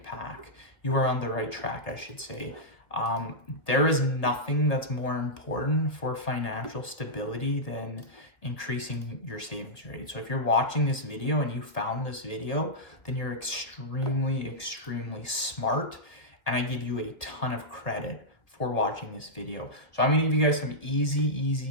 path. You are on the right track, I should say. There is nothing that's more important for financial stability than increasing your savings rate. So if you're watching this video and you found this video, then you're extremely smart, and I give you a ton of credit for watching this video. So I'm gonna give you guys some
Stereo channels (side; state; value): right; late; 1.5 ms